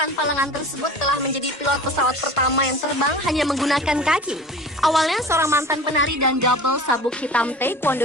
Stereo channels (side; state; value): both; normal; correlation 0.39